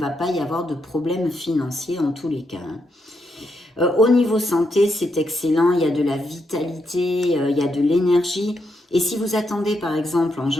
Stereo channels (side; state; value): both; normal; correlation 0.81